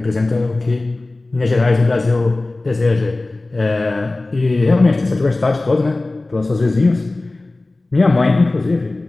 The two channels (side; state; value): right; quieter; 3.0 dB